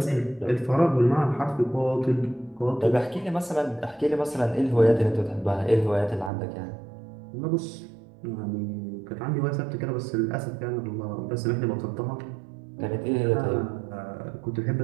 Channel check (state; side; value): drops out; left; at 6.3 s